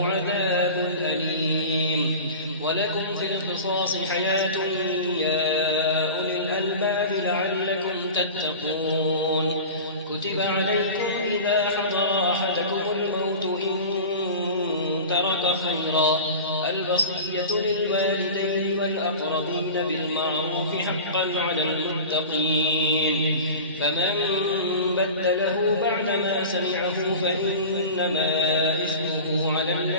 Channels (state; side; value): inverted; both; correlation -0.34